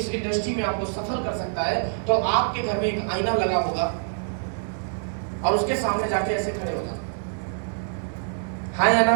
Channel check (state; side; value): silent; left; digital silence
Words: इंडस्ट्री में आपको सफल कर सकता है, तो आपके घर में एक आईना लगा होगा और उसके सामने जाके ऐसे खड़े हो जाना, हाँ या